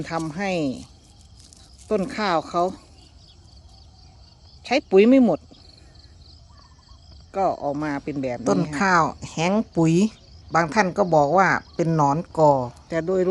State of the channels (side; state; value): both; identical; correlation 1.00